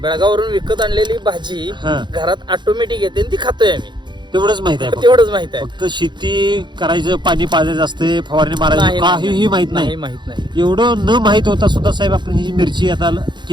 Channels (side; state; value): left; late; 0.22 ms